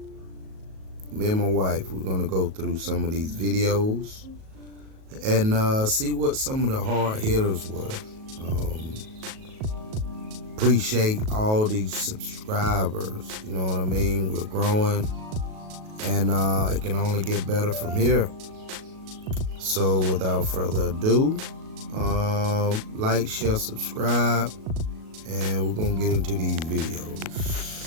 and my wife, we're gonna go through some of these videos and see what some of the hard hitters were. Appreciate all these subscribers. You know what I mean? We're growing, and it can only get better from here. So without further ado, like, share, subscribe, and we're gonna get into these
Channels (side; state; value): left; late; 37 ms